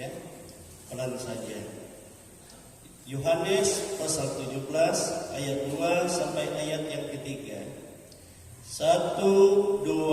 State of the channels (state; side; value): identical; both; correlation 1.00